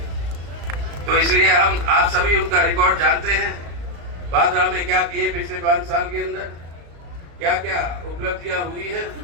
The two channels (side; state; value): left; late; 35 ms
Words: तो इसलिए हम आप सभी उनका रिकॉर्ड जानते हैं, भादरा में क्या किए पिछले 5 साल के अंदर, क्या क्या उपलब्धियां हुई है